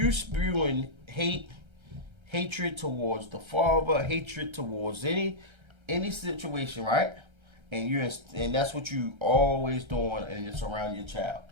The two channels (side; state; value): left; late; 1.3 ms